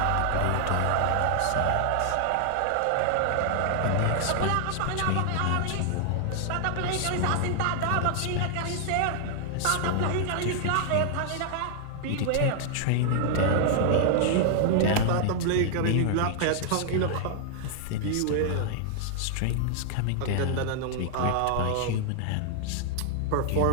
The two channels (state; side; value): different; both; correlation -0.01